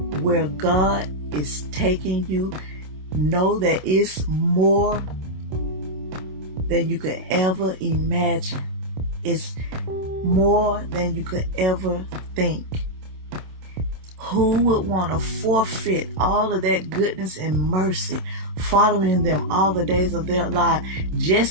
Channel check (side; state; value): left; late; 27 ms